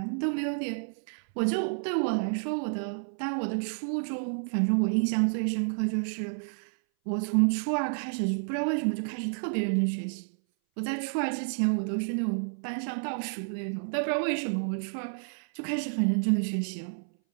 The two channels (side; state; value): left; silent; 58 dB below the other